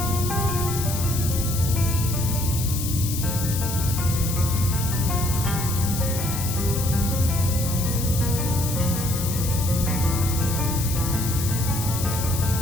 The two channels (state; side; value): noise; left; hiss, 6 dB below the sound